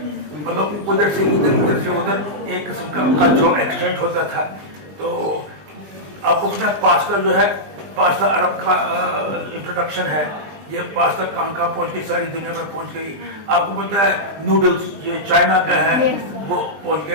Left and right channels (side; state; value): left; late; 20 ms